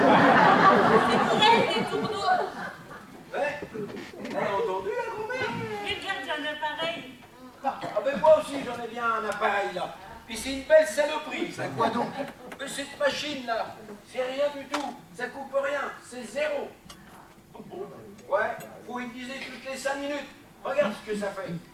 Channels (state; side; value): identical; both; correlation 1.00